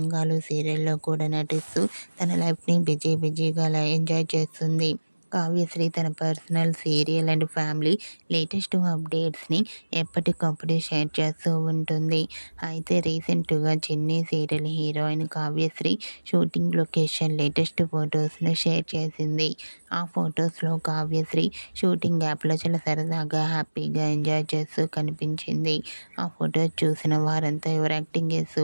సీరియల్లో కూడా నటిస్తూ తన లైఫ్ని బిజీగా ఎంజాయ్ చేస్తుంది. కావ్యశ్రీ తన personal, serial and family latest అప్డేట్స్ని ఎప్పటికప్పుడు షేర్ చేస్తూ ఉంటుంది. అయితే రీసెంట్గా Chinni serial heroine Kavyasri shooting location latest ఫొటోస్ను షేర్ చేసింది. ఆ ఫొటోస్లో కావ్యశ్రీ షూటింగ్ యాప్లో చాలా సరదాగా, హ్యాపీగా ఎంజాయ్ చేస్తూ కనిపించింది. ఆ ఫొటోస్ చూసిన వారంతా your acting is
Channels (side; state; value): both; inverted; correlation -1.00